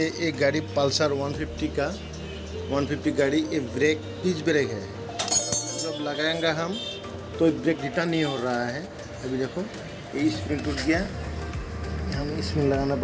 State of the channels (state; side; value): identical; both; correlation 1.00